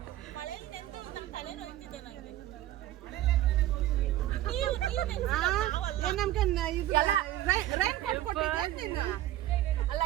ಮಳೆಯಲ್ಲಿ ನೆಂದು ನಮ್ಮ ತಲೆ ನೋಯ್ತಿದೆ ನನಗೆ. ಅಲ್ಲ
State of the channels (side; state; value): left; quieter; 13.9 dB